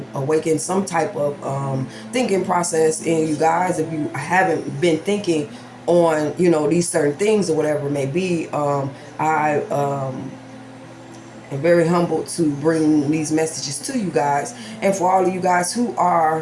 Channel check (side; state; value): both; identical; correlation 1.00